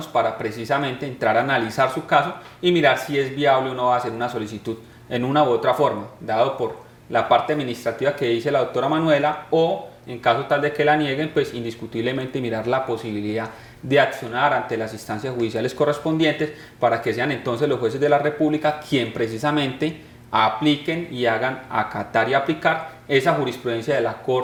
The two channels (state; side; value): identical; both; correlation 1.00